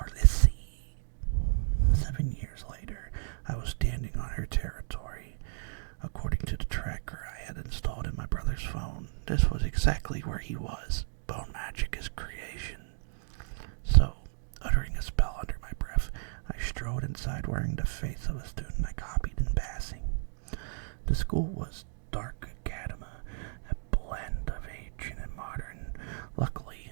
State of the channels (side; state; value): left; silent; digital silence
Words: 7 years later, I was standing on her territory. According to the tracker I had installed in my brother's phone, this was exactly where he was. Bone magic is creation. So, uttering a spell under my breath, I strode inside wearing the face of a student I copied in passing. The school was Dark Academa, a blend of ancient and modern. Luckily,